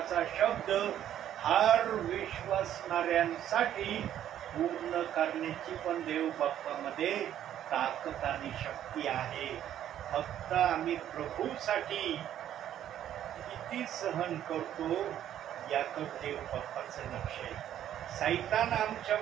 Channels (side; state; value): left; quieter; 11.0 dB